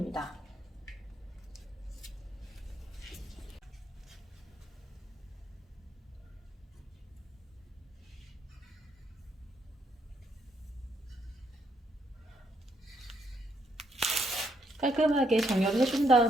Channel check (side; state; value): both; normal; correlation 0.74